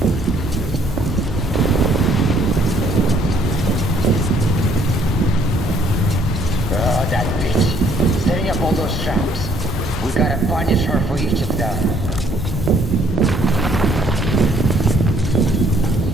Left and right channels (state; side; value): normal; both; correlation 0.64